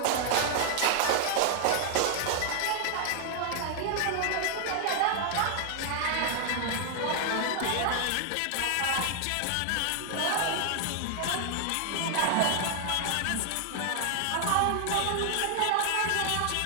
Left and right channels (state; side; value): different; both; correlation 0.00